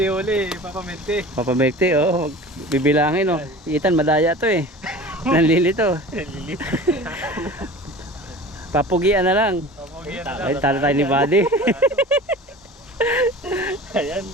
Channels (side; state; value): both; normal; correlation 0.38